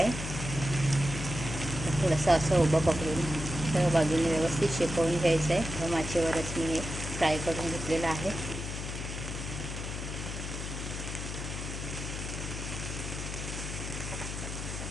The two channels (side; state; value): left; noise; hum, 6 dB below the sound